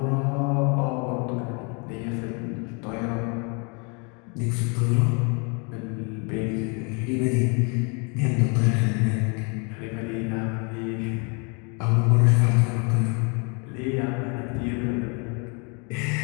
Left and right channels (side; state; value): right; quieter; 34.3 dB